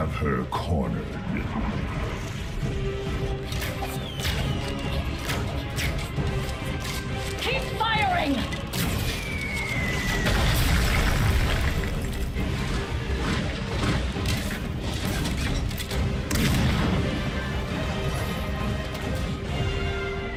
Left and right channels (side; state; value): both; identical; correlation 1.00